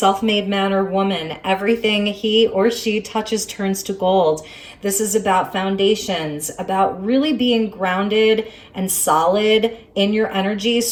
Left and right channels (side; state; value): both; identical; correlation 1.00